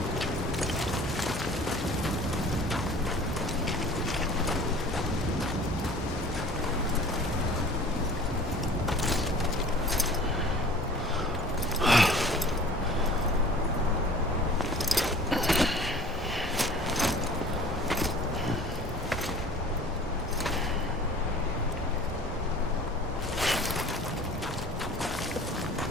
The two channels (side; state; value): both; normal; correlation 0.45